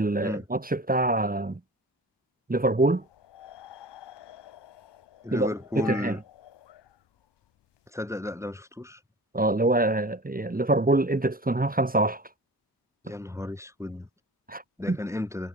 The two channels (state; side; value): normal; both; correlation 0.39